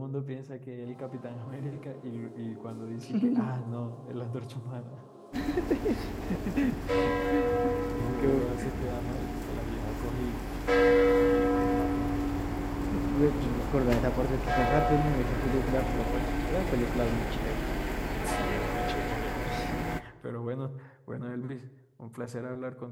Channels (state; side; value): identical; both; correlation 1.00